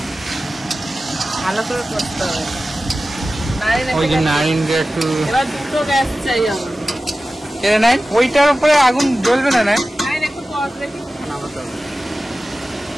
করতে হবে। ওই যে নারিনটা একটু এবার 2টো গ্যাস চাই আমার। কেড়ে নেন, ওইটার উপরে আগুন জ্বলবে না? না একটু পজ রেখে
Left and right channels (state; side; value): normal; both; correlation 0.95